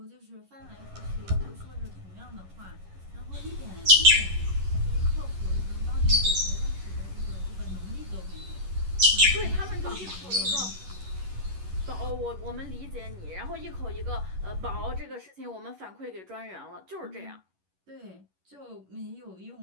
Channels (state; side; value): late; left; 11 ms